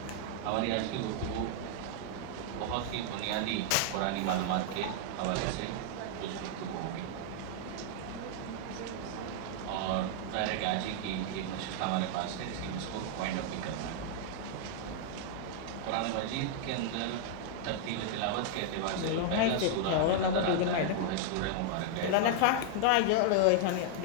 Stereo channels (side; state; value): both; different; correlation -0.01